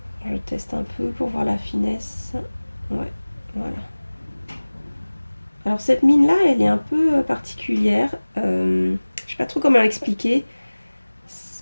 Je teste un peu pour voir la finesse. Ouais, voilà. Alors cette mine là, elle est un peu particulière. Je sais pas trop comment l'expliquer.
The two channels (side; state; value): both; inverted; correlation -1.00